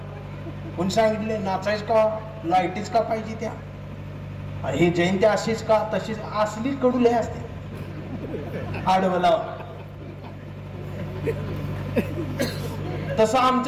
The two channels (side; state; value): both; identical; correlation 1.00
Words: कोणी सांगितले नाचायच का, लाईटीच का पाहिजे त्या, हे जयंती अशीच का तशीच, असली कडुले असते. आडवला तसं